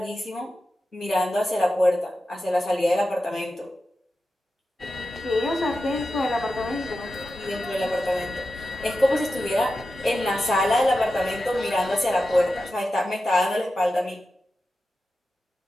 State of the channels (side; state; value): both; normal; correlation 0.92